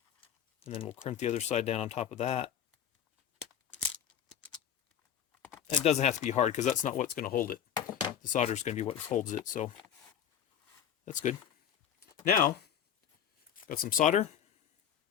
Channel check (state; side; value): quieter; right; 9.2 dB